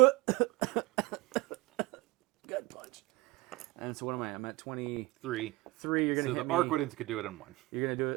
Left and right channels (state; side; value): quieter; left; 21.7 dB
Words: punch. And so what am I? I'm at 23. You're gonna so hit the Arquidens could do it in 1. You're gonna do